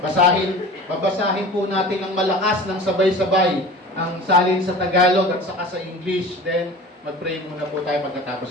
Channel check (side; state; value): both; normal; correlation 0.39